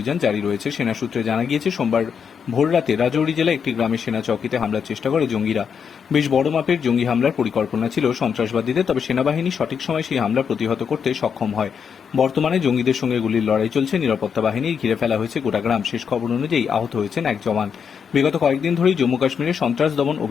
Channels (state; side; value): quieter; right; 6.9 dB